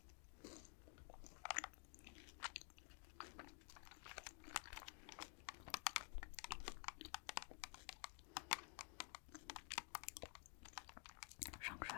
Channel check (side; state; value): right; quieter; 36.4 dB